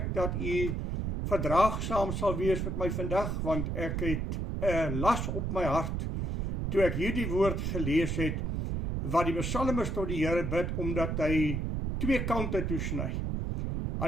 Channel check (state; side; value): noise; right; rumble, 1 dB below the sound